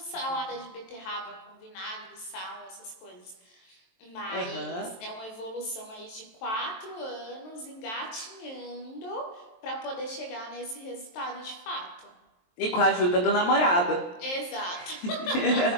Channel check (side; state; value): right; late; 23 ms